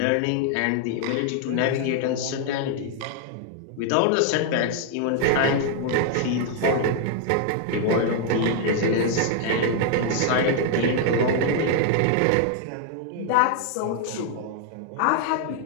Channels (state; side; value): different; both; correlation 0.00